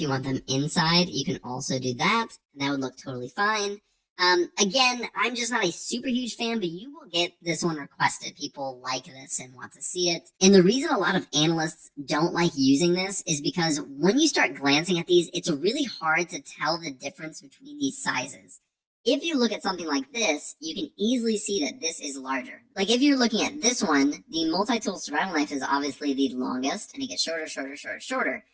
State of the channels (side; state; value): both; identical; correlation 1.00